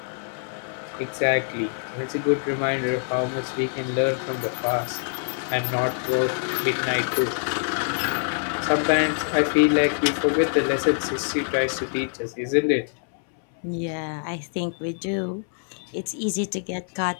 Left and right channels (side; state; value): right; silent; 62 dB below the other